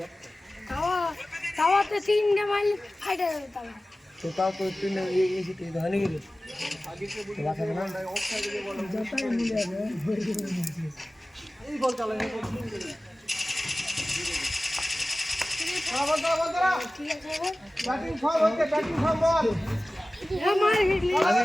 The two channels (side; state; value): both; normal; correlation 0.97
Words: তাওয়াতে তিনটে মাইল ফাইটা যাবে তাওয়া। তো তাও তো তুই এসে তুই ধরে গেলি বাঁচাবে না। ঠিক আছে